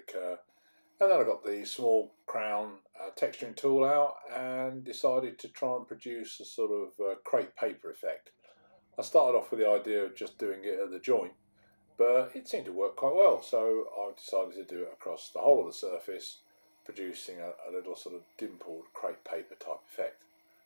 And then I got the small crown texturing tool out and decided to try and produce a sort of crepe paper effect. I started off with the idea of just doing it at the joint, but it seemed to work quite well, so I decided to do it across the whole of the surface, producing a little sort of dimpled crepe paper type effect,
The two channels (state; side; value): inverted; both; correlation -1.00